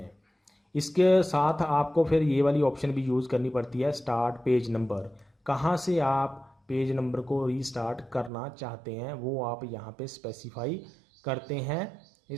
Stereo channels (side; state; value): left; drops out; at 8.3 s